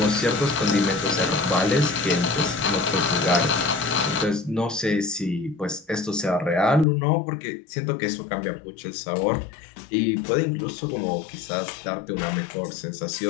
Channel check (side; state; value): right; drops out; at 6.9 s